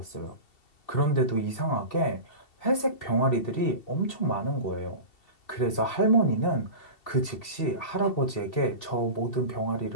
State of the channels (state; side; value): late; right; 2.7 ms